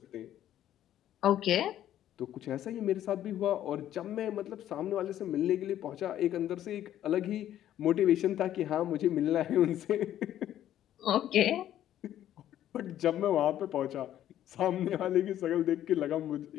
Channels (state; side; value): quieter; right; 11.8 dB